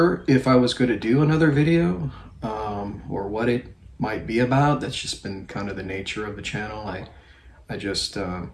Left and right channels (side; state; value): both; identical; correlation 1.00